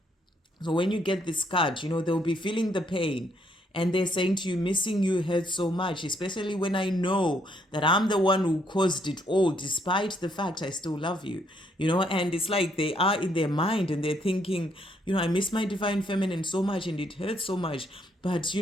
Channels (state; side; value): normal; both; correlation 0.71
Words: So when you get this card, they'll be feeling the pain And they're saying to you, missing you hurts so much, especially when I know that I'm the one who caused it all, despite the fact I still love you. And it's like they are in their mind and they're thinking, I miss my divine feminine so much and it hurts so much. But,